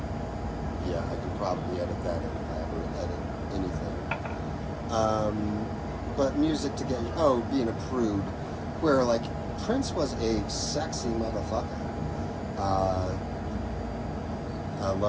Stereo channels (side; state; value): both; identical; correlation 1.00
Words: Yeah, I could probably edit that in if I ever edit anything. But music to get being a prude, where Prince was a sexy motherfucker. I